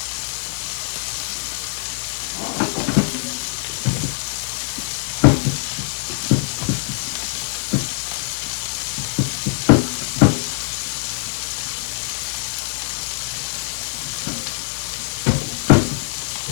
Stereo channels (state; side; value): silent; right; 64 dB below the other